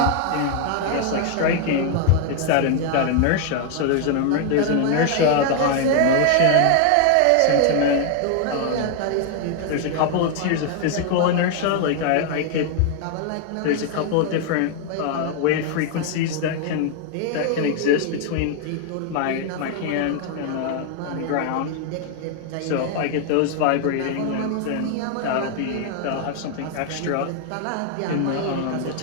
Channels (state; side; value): different; both; correlation 0.00